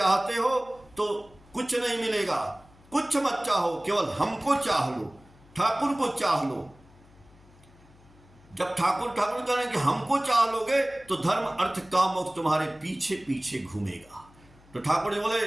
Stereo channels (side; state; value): left; noise; hum, 26 dB below the sound